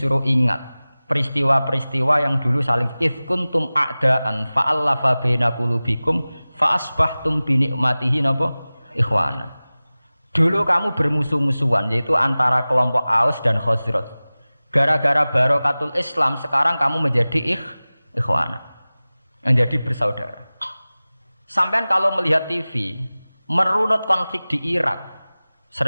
ingat peristiwa-peristiwa yang dulu saling kuntum a'daan fa'allafa baina qulubikum fa asbahtum bi ni'matihi napa ikhwanan. Dulu kamu bermusuh-musuhan, yaitu antara kelompok Aus dan Khazraj. Gara-gara barokatul Islam sekarang kamu menjadi ikhwana, menjadi bersaudara. Sampean kalau melihat TV merunut konflik di Irak,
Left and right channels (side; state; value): both; inverted; correlation -0.98